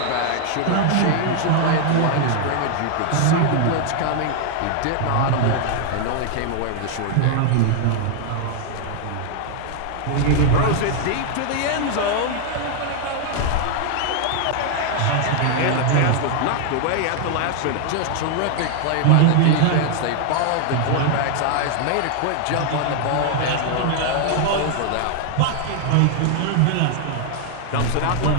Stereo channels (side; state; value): both; different; correlation 0.00